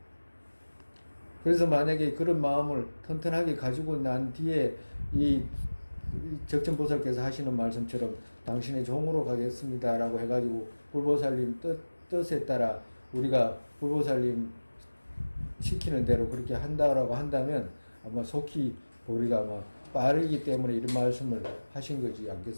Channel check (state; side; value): inverted; both; correlation -1.00